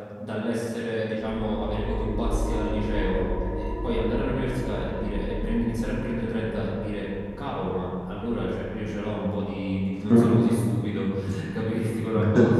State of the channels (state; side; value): identical; both; correlation 1.00